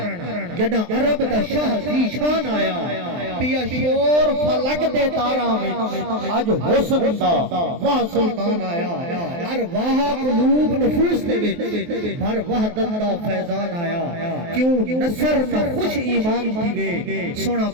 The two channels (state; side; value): late; left; 23 ms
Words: جڑا عرب دا شاہ زی شان آیا۔ پیا شور فلک دے تاراں وچ، اج حسن دا وہ سلطان آیا۔ ارواح قلوب نفوس دے وچ بھر وحدت دا فیضان آیا۔ کیوں نصر نہ خوش ایمان تھی وے، سونا